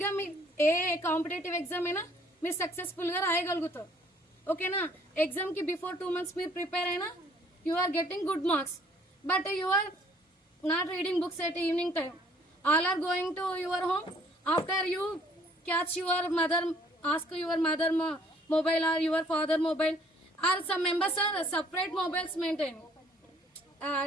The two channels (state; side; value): normal; both; correlation 0.60